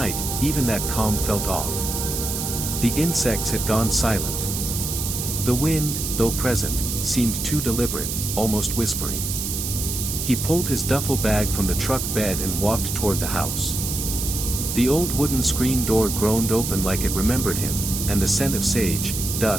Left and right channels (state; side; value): noise; right; hiss, 3 dB below the sound